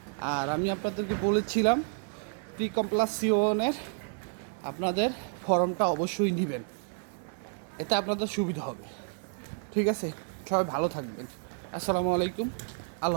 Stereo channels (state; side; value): silent; left; 58 dB below the other